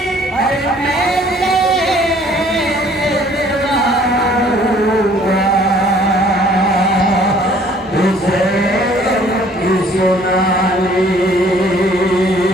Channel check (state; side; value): normal; both; correlation 0.57